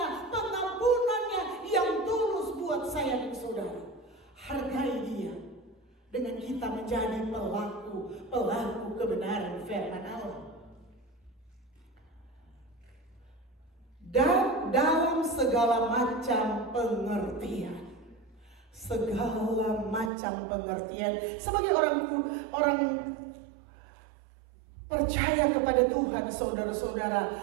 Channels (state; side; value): drops out; left; at 20.1 s